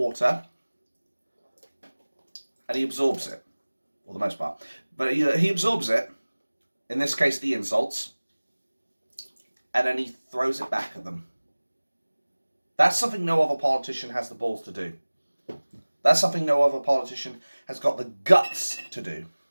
and he absorbs it, for the most part. But he absorbs it, in this case the insults, and then he throws it back at them. That's something no other politician has the balls to do. That's something no other politician has got the guts to do.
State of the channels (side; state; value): both; inverted; correlation -1.00